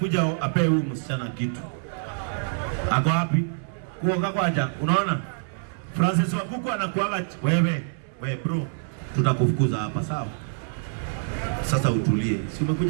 apewe huyu msichana kitu. Ako wapi? Kuoga kwaja. Unaona? Francis Wakuku anakuaga wewe bro, tutakufukuza hapa sawa? Sasa utulie. Si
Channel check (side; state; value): left; silent; 60 dB below the other